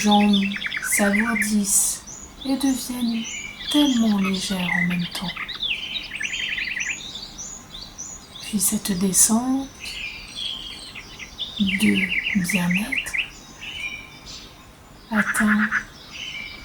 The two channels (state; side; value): identical; both; correlation 1.00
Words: s'alourdissent et deviennent tellement légères en même temps. Puis cette descente de bien-être atteint